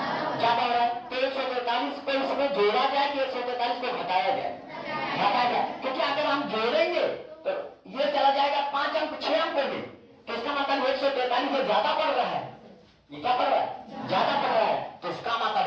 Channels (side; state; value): both; identical; correlation 1.00